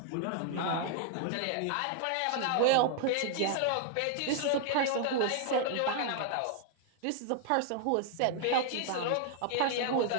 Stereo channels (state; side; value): different; both; correlation 0.00